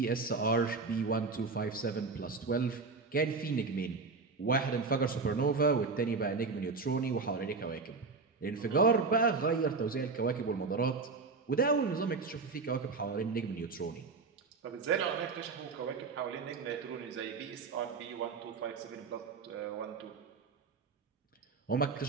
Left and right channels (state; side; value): quieter; left; 4.4 dB